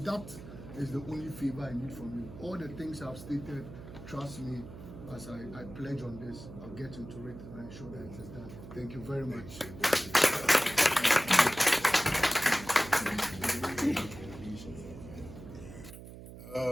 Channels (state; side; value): noise; right; hum, 14 dB below the sound